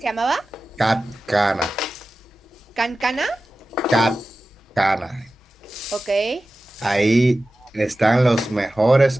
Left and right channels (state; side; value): normal; both; correlation 0.95